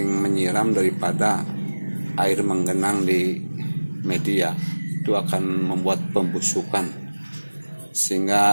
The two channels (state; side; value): inverted; both; correlation -1.00